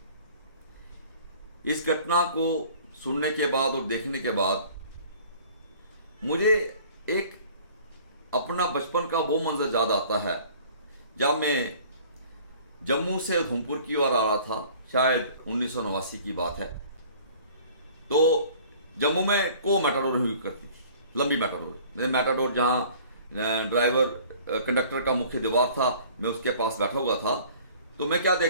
इस घटना को सुनने के बाद और देखने के बाद मुझे एक अपना बचपन का वो मंजर याद आता है जब मैं जम्मू से उधमपुर की ओर आ रहा था। शायद 1989 की बात है। तो जम्मू में को मैटाडोर हुई करती थी, लंबी मैटाडोर। मैटाडोर जहाँ ड्राइवर कंडक्टर का मुख्य दीवार था, मैं उसके पास बैठा हुआ था। तो मैं क्या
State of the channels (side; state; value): both; inverted; correlation -0.50